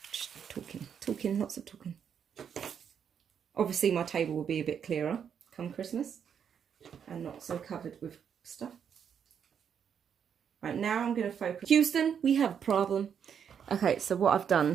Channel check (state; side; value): quieter; left; 7.8 dB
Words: Just talking, lots of talking. Obviously my table will be a bit clearer come Christmas and not so covered with stuff. Right, now I'm going to focus. Houston, we have a problem. Okay, so what I've